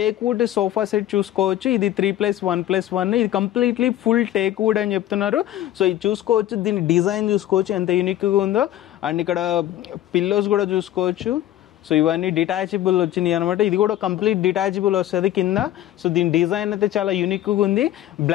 వుడ్ సోఫా సెట్ చూసుకోవచ్చు, ఇది 3+1+1. ఇది కంప్లీట్లీ ఫుల్ టేక్ వుడ్ అని చెప్తున్నారు. సో ఇది చూసుకోవచ్చు, దీని డిజైన్ చూసుకోవచ్చు ఎంత యూనిక్గా ఉందో. అండ్ ఇక్కడ పిల్లోస్ కూడా చూసుకోవచ్చు. సో ఇవన్నీ డిటాచబుల్ వచ్చినాయి అనమాట. ఇది కూడా కంప్లీట్ డిటాచబుల్ వస్తుంది కింద. సో దీని డిజైన్ అయితే చాలా యూనిక్గా ఉంది.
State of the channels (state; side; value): quieter; right; 13.1 dB